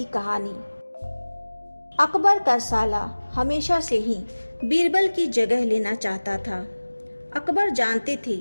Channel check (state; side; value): inverted; both; correlation -1.00